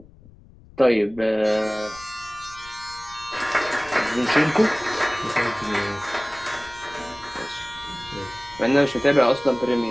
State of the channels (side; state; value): left; noise; rumble, 23 dB below the sound